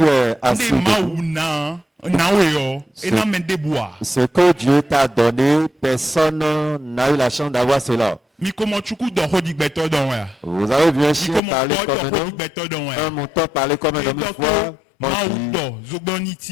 es assis, Nde maou na weyo. Et na mende bois. ce que Dieu t'a donné, personne n'a eu la chance d'avoir cela. Miko mochuku do hodi beto don ya. Vous avez vu un chien Miko parler mo comme un do hodi homme, beto don ya. un mouton parler comme un Et homme une donc fois. On maou dit, do zogboni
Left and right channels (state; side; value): drops out; right; at 11.4 s